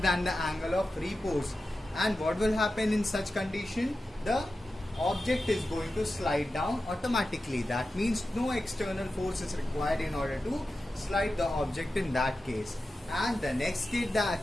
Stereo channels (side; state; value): both; normal; correlation 0.92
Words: the angle of repose, and what will happen in such condition? The object is going to slide down automatically. That means no external force is required in order to slide the object in that case. And the next case